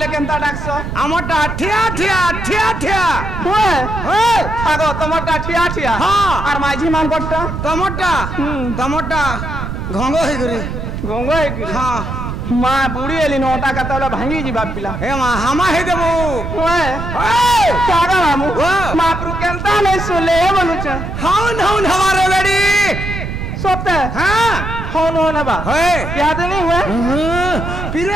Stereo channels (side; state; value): right; noise; rumble, 5 dB below the sound